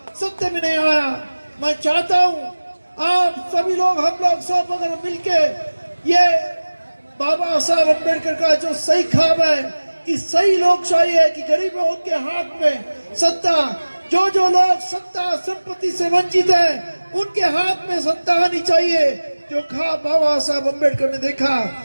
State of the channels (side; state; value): both; inverted; correlation -1.00